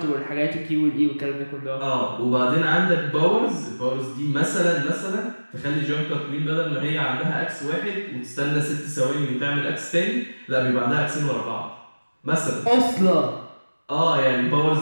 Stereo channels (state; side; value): inverted; both; correlation -1.00